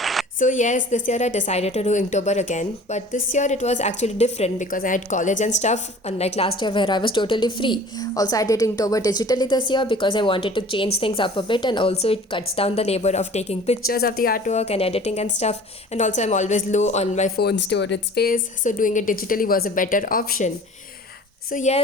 So, yes, this year I decided to do Inktober again, but this year it was actually different because I had college and stuff, unlike last year where I was totally free. Also, I did Inktober digitally this year because I wanted to change things up a bit, and also it cuts down the labor of taking pictures of the artwork and editing and stuff. And also, I'm always low on my phone storage space, so doing it digitally was a better option. So,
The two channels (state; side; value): normal; both; correlation 0.46